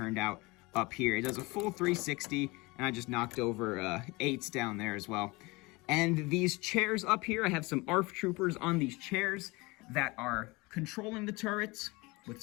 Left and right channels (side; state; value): right; quieter; 24.1 dB